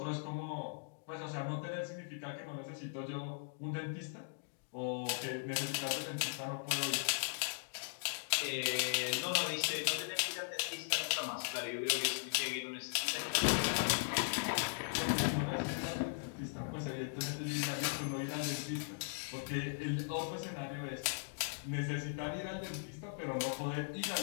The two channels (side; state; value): right; silent; digital silence